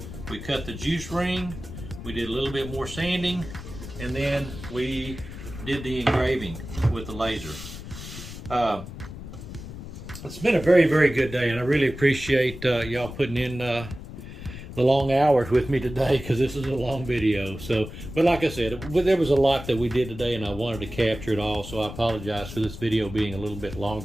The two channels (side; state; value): left; noise; rumble, 11 dB below the sound